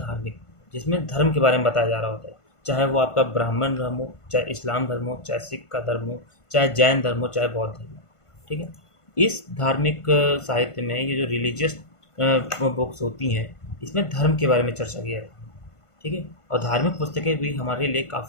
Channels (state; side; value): late; right; 1.5 ms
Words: जिसमें धर्म के बारे में बताया जा रहा होता है, चाहे वो आपका ब्राह्मण धर्म हो, चाहे इस्लाम धर्म हो, चाहे सिख का धर्म हो, चाहे जैन धर्म हो, चाहे बौद्ध धर्म हो। ठीक है, इस धार्मिक साहित्य में ये जो रिलीजियस बुक्स होती हैं, इसमें धर्म के बारे में चर्चा की जाती है। ठीक है, और धार्मिक पुस्तकें भी हमारे लिए